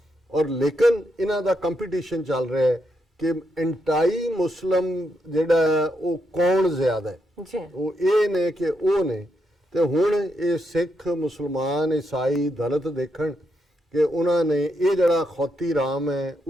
ਔਰ ਲੇਕਿਨ ਇਹਨਾਂ ਦਾ ਕੰਪੀਟੀਸ਼ਨ ਚੱਲ ਰਿਹਾ ਹੈ ਕਿ ਐਂਟਾਈ ਮੁਸਲਮ ਜਿਹੜਾ ਹੈ ਉਹ ਕੌਣ ਜ਼ਿਆਦਾ ਹੈ, ਜੀ ਉਹ ਇਹ ਨੇ ਕਿ ਉਹ ਨੇ। ਤੇ ਹੁਣ ਇਹ ਸਿੱਖ, ਮੁਸਲਮਾਨ, ਈਸਾਈ, ਦਲਿਤ ਦੇਖਣ ਕਿ ਉਹਨਾਂ ਨੇ ਇਹ ਜਿਹੜਾ ਖੌਤੀ ਰਾਮ ਹੈ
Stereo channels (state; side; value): normal; both; correlation 0.81